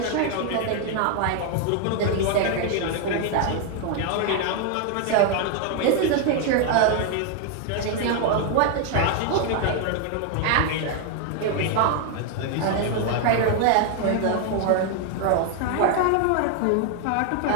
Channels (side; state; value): both; different; correlation 0.01